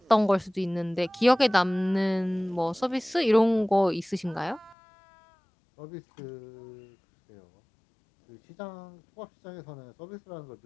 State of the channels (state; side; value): drops out; right; at 4.8 s